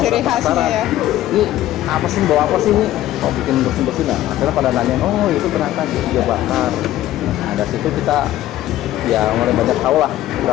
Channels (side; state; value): right; quieter; 13.9 dB